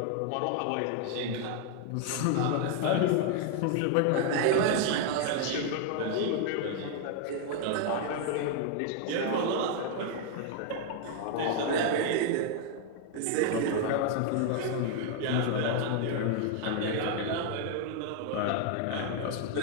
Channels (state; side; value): different; both; correlation 0.00